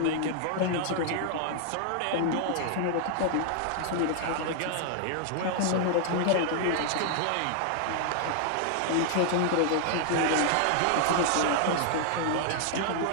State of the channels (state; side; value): different; both; correlation 0.00